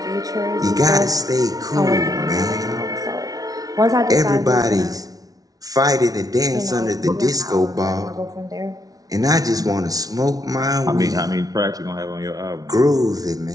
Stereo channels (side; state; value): left; late; 0.18 ms